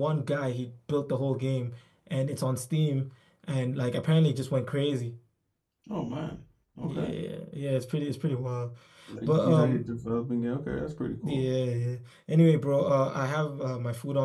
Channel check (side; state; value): both; identical; correlation 1.00